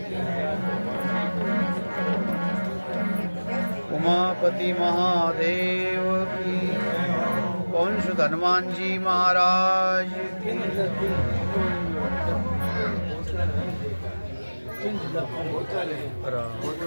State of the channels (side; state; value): both; inverted; correlation -1.00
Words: उमापति महादेव की पवन सुत हनुमान जी महाराज की